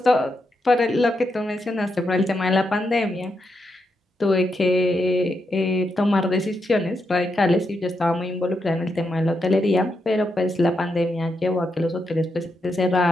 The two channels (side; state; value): both; normal; correlation 0.83